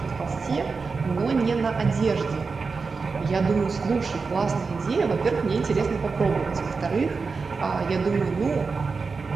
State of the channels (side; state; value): left; quieter; 4.6 dB